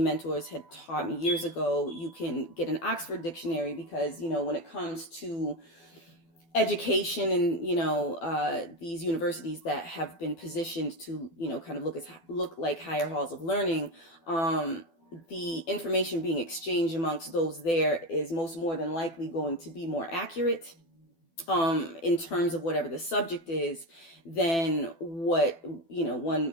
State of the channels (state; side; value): late; right; 12 ms